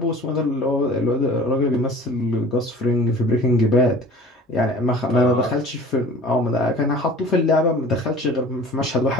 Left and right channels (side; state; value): both; normal; correlation 0.44